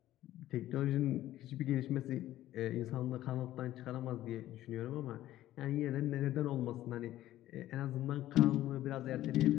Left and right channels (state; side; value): quieter; right; 14.1 dB